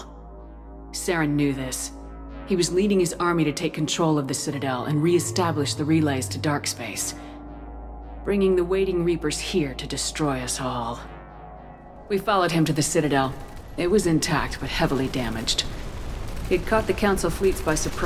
Saren knew this. He was leading his army to take control of the Citadel and re-establish the relays to dark space, bringing the waiting Reapers here to destroy us all. We followed him to the Citadel. It was intact, but heavily damaged. He'd caught the Council fleets by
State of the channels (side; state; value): both; identical; correlation 1.00